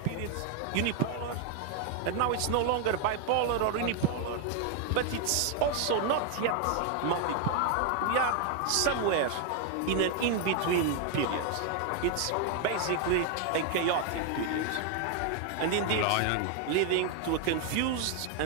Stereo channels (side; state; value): both; different; correlation 0.00